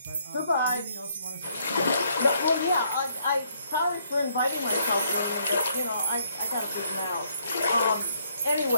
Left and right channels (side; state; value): both; inverted; correlation -0.70